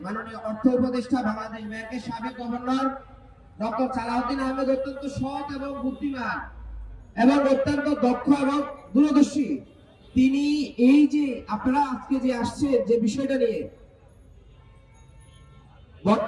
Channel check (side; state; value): both; identical; correlation 1.00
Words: মাননীয় অর্থ উপদেষ্টা, বাংলাদেশ ব্যাংকের সাবেক গভর্নর ডক্টর সালাউদ্দিন আহমেদ অত্যন্ত সৎ এবং বুদ্ধিমান এবং অত্যন্ত দক্ষ এবং দূরদর্শী। তিনি এই যে আপনারা আজকে যে আসছে যে বিষয়টা নিয়ে,